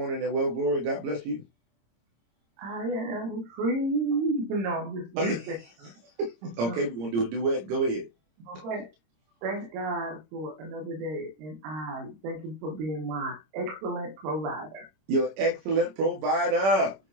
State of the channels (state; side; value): late; left; 26 ms